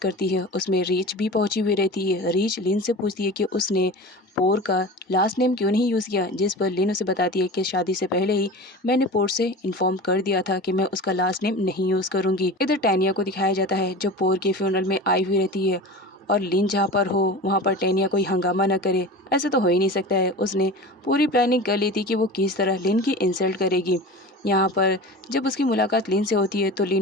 है। उसमें रीच भी पहुंची हुई रहती है। रीच लिन से पूछती है कि उसने पोर का लास्ट नेम क्यों नहीं यूज़ किया, जिस पर लिन उसे बताती है कि शादी से पहले ही मैंने पोर से इन्फॉर्म कर दिया था कि मैं उसका लास्ट नेम नहीं यूज़ करूँगी। इधर टैनिया को दिखाया जाता है जो पोर के फ्यूनरल में आई हुई रहती है और लिन जहाँ पर हो वहाँ पर टैनिया कोई हंगामा न करे। ऐसा तो हो ही नहीं सकता है। उसने पूरी प्लानिंग कर ली थी कि वो किस तरह लिन की इंसल्ट करेगी। यहाँ पर जब उसकी मुलाकात लिन से होती है तो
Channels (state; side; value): normal; both; correlation 0.33